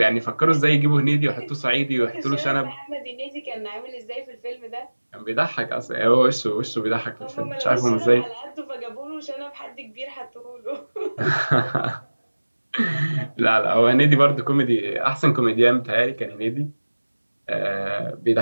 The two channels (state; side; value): inverted; both; correlation -1.00